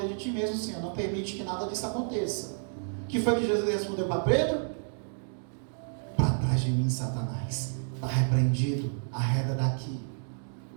de ti mesmo, Senhor, não permite que nada disso aconteça. O que foi que Jesus respondeu para Pedro? De mim, Satanás, está repreendido, arreda daqui.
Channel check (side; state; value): left; silent; digital silence